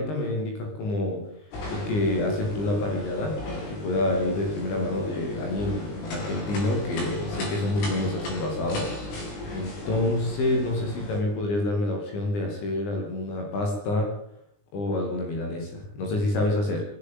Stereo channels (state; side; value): late; right; 20 ms